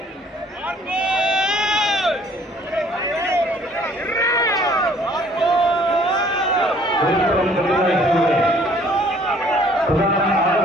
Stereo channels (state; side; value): normal; both; correlation 0.58